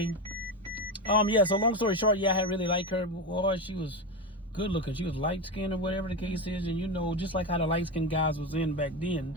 Yeah, so long story short, yeah, I really liked her. Boy, she was good looking. She was light skinned or whatever the case is. And just like how the light skinned guys was in back then,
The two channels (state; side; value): normal; both; correlation 0.17